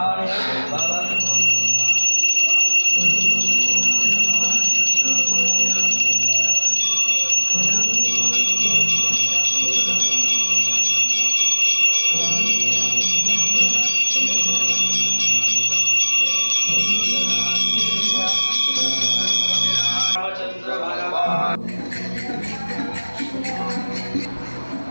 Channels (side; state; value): both; inverted; correlation -1.00